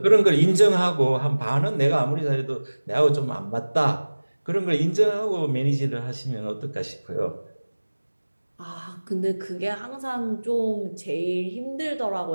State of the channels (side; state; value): both; inverted; correlation -1.00